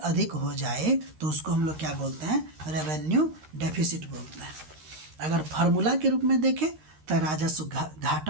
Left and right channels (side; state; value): left; late; 13 ms